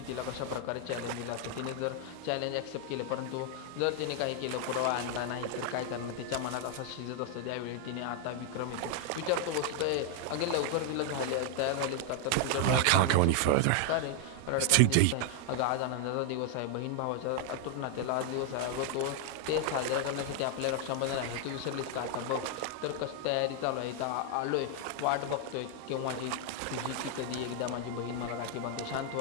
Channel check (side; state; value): both; different; correlation 0.00